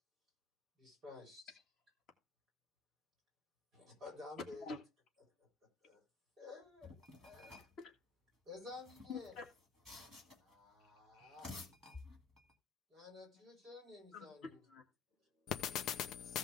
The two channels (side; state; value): right; quieter; 5.8 dB